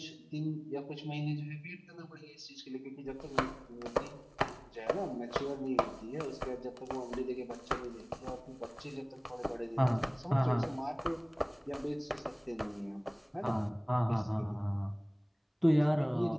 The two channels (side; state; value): both; identical; correlation 1.00